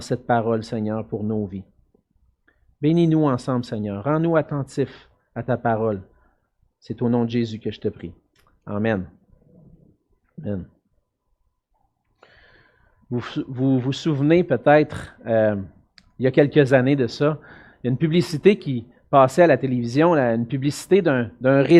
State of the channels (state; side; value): identical; both; correlation 1.00